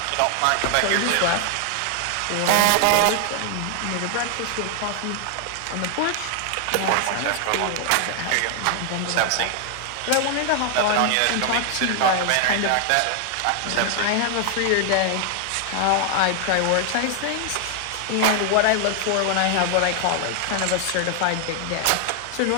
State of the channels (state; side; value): different; both; correlation 0.00